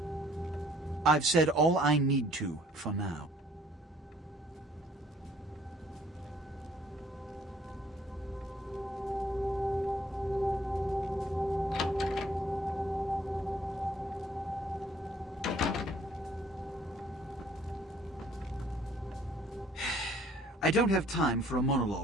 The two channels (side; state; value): both; normal; correlation 0.59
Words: I've said all I need to for now. I don't have time for a